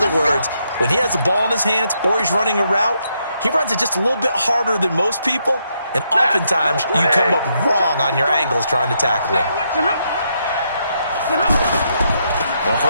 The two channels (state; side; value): inverted; both; correlation -0.78